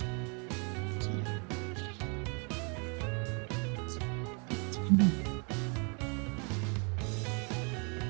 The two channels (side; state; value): left; quieter; 35.7 dB